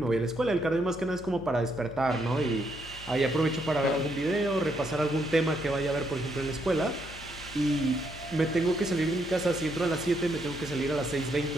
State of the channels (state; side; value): noise; left; hum, 16 dB below the sound